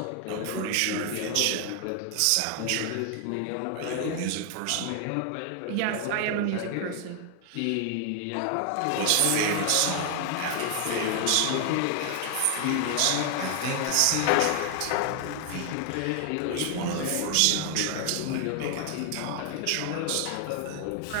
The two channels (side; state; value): both; different; correlation 0.00